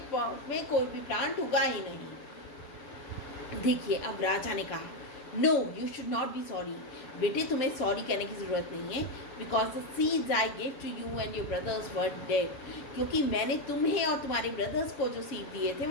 पॉट में कोई भी प्लांट उगा ही नहीं. देखिए अब राजा ने कहा, no you should not be sorry. बेटे तुम्हें सॉरी कहने की ज़रूरत नहीं है, because the seeds I give to you and your brothers were dead. क्योंकि मैंने तुम्हें और तुम्हारे ब्रदर्स को जो सीड दिए थे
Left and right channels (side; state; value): right; late; 7.1 ms